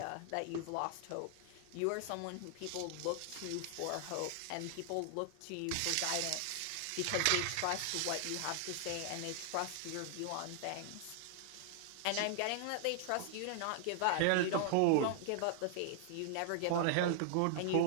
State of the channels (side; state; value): both; different; correlation -0.01